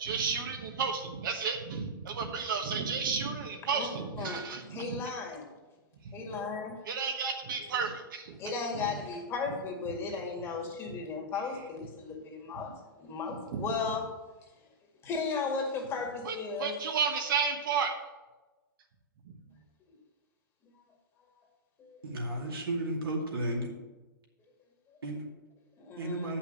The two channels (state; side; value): normal; both; correlation -0.12